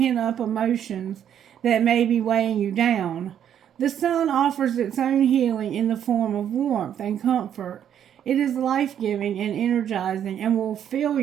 emotions that may be weighing you down. The sun offers its own healing in the form of warmth and comfort. It is life-giving and energizing and will fill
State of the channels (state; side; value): quieter; left; 9.6 dB